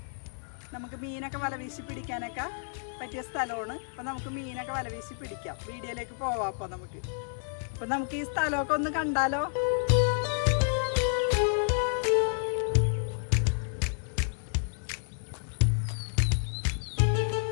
നമുക്ക് മീനൊക്കെ വലവീശി പിടിക്കാനൊക്കെ പറ്റിയ സ്ഥലമാണ്. അപ്പോൾ നമുക്ക് മീനൊക്കെ വലവീശി പിടിക്കാം. വീഡിയോയിലേക്ക് പോവാം. അപ്പോൾ നമുക്ക് ഈ സ്ഥലമൊക്കെ ഒന്ന് കണ്ടാലോ?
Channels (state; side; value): silent; right; 58 dB below the other